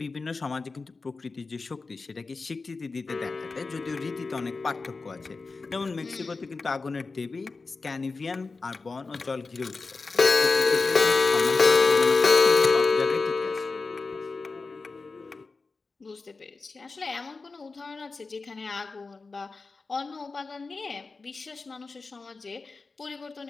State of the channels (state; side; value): quieter; right; 4.0 dB